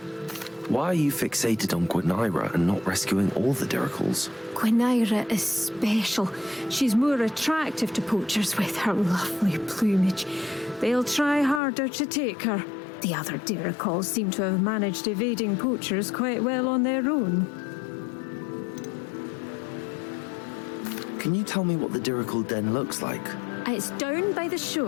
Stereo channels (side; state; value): right; drops out; at 11.6 s